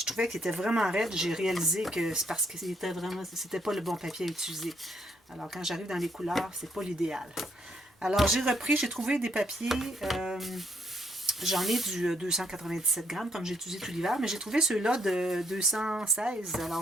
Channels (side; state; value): both; normal; correlation 0.71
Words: trouvais qu'il était vraiment raide. J'ai réalisé que c'est parce que c'était pas le bon papier à utiliser. Alors quand j'arrive dans les couleurs, c'est pas l'idéal. Alors j'ai repris, j'ai trouvé des papiers, j'en ai du 297 grammes comme j'ai utilisé tout l'hiver, mais j'ai trouvé ceux-là de 216. Alors